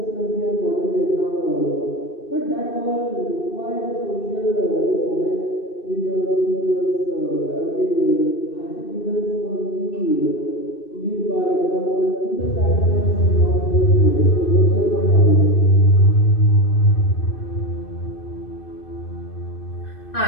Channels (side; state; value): right; late; 2.6 ms